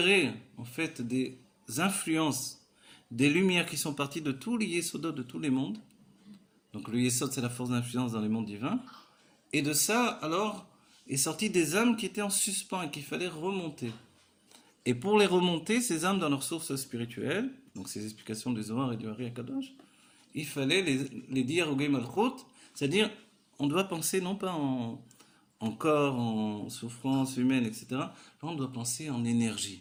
en fait des influences, des lumières qui sont parties de tous les Yesodot de tous les mondes. Donc le Yesod, c'est la force d'influence dans les mondes divins. Et de ça, alors, est sorti des âmes qui étaient en suspens et qu'il fallait remonter. Et pour les remonter, ces âmes dans leur source spirituelle, donc ces explications du Zohar et du Hari HaKadosh, il fallait les dire au Gay Malchut, c'est-à-dire, on doit penser non pas en corps, en souffrance humaine, etc. Là, on doit penser en énergie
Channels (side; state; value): both; identical; correlation 1.00